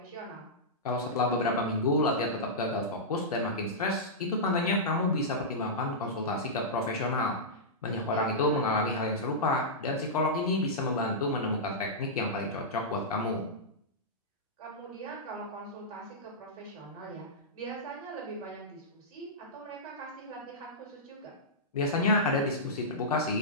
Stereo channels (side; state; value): both; normal; correlation -0.13